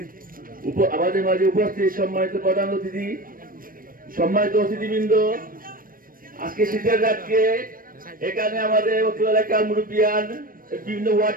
আমাদের মাঝে উপস্থিত সম্মানিত প্রধান অতিথি, সম্মানিত অতিথিবৃন্দ, আজকে শীতের রাতকে এখানে আমাদের অত্র এলাকার মুরব্বিয়ান, বিভিন্ন ওয়ার্ড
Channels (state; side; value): late; left; 0.41 ms